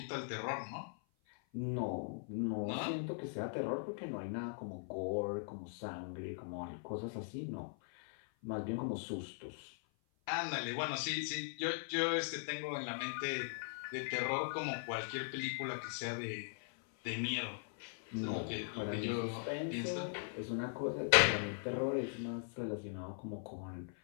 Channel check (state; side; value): silent; right; 51 dB below the other